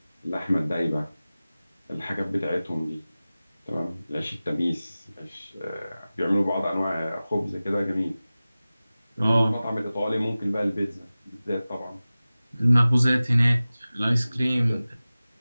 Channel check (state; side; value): inverted; both; correlation -0.97